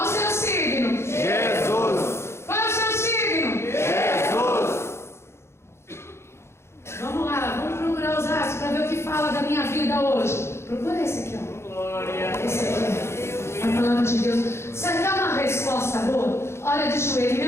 o seu signo? Jesus. Qual é o seu signo? Jesus. Vamos lá, vamos procurar os astros para ver o que fala da minha vida hoje. Procura esse aqui, ó. Esse aqui, a palavra de Deus. Você quer uma resposta boa? Olha de joelho, em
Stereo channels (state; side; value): late; right; 0.13 ms